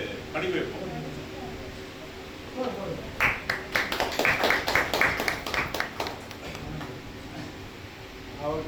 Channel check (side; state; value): both; identical; correlation 1.00